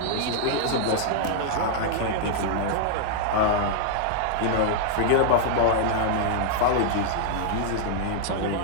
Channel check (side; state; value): both; different; correlation -0.01